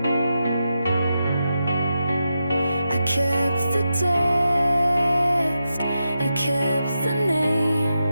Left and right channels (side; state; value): both; inverted; correlation -0.87